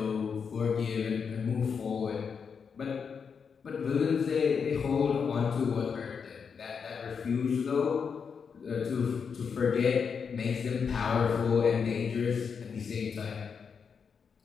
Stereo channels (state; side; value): quieter; right; 6.2 dB